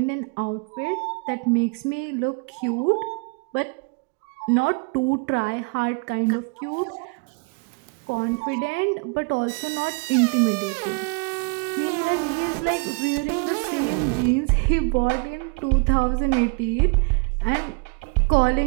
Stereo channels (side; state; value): left; quieter; 32.9 dB